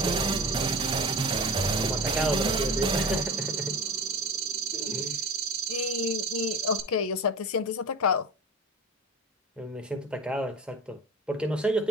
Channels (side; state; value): both; normal; correlation 0.32